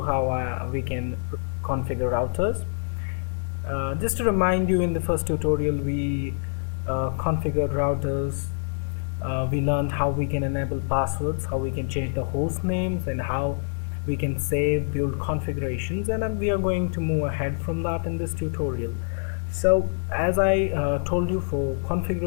how we can configure routers. Just to remind you, in the first tutorial we configured routers. We learned how we can enable passwords, how we can change the host names, and how we can save build configurations, and we are going to move ahead from that in this tutorial. So as I told you, for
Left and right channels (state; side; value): silent; right; digital silence